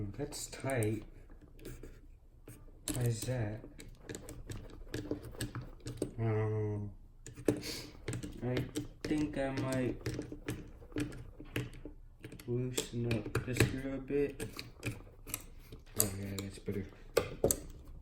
that's tight. Why is that? I think I might loosen up the screw a bit. Oh yeah, that's better.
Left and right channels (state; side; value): identical; both; correlation 1.00